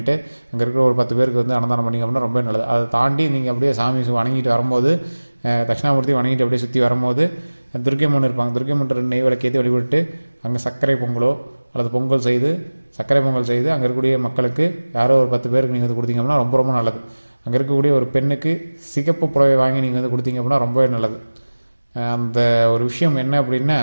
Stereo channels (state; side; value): inverted; both; correlation -1.00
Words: அங்கே இருக்கிற ஒரு 10 பேருக்கு வந்து அன்னதானம் பண்ணிங்க அப்படின்னா ரொம்ப நல்லது. அதை தாண்டி நீங்கள் அப்படியே சாமி வணங்கிட்டு வரும்போது, தட்சிணாமூர்த்தி வணங்கிட்டு அப்படியே சுற்றி வரும்போது துர்க்கையம்மன் இருப்பாங்க, துர்க்கையம்மன் நெய் விளக்கேற்றி வழிபட்டு அங்கே சர்க்கரை பொங்கலோ அல்லது சர்க்கரை பொங்கல் செய்து அங்கே இருக்கக்கூடிய மக்களுக்கு யாரோ ஒரு 10 பேருக்கு நீங்கள் வந்து கொடுத்தீங்க அப்படின்னா ரொம்ப ரொம்ப நல்லது. அங்கே இருக்கக்கூடிய ஒரு பெண்ணுக்கு சிகப்பு புடவை வாங்கி நீங்கள் வந்து கொடுத்தீங்க அப்படின்னா ரொம்பவே நல்லது. அந்த ஒரு விஷயம் என்ன அப்படின்னா,